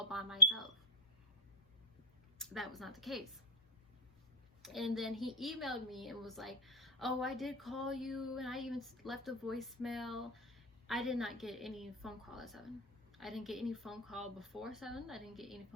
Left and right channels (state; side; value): normal; both; correlation 0.03